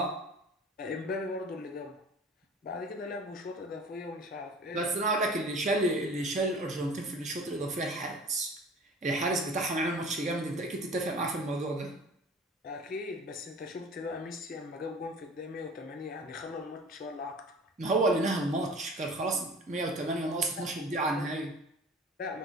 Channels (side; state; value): both; normal; correlation 0.43